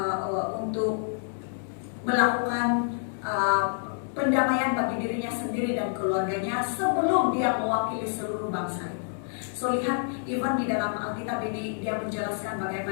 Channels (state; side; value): silent; right; 59 dB below the other